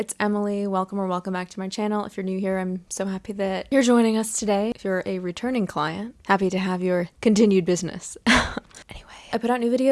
Emily. Welcome back to my channel. If you're new here, I'm so happy that you're joining us today. If you're a returning client, happy to have your continued business. Anyway, I put out new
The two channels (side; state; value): both; identical; correlation 1.00